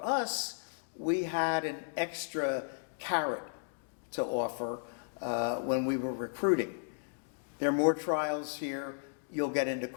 us, we had an extra carrot to offer when we were recruiting. There are more trials here, you'll get into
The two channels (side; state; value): right; silent; digital silence